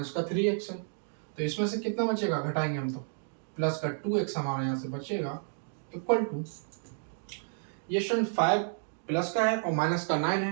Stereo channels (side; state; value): left; silent; digital silence